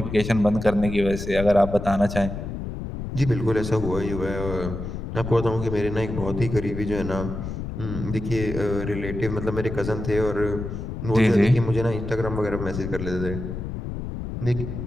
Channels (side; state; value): left; noise; rumble, 6 dB below the sound